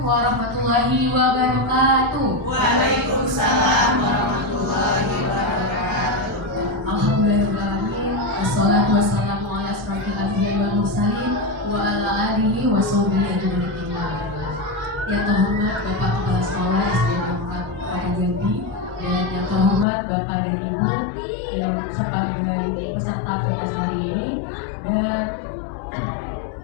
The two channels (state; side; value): drops out; right; at 19.9 s